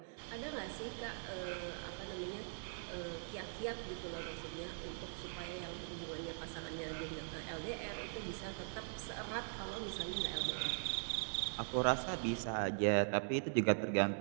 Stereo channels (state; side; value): silent; left; digital silence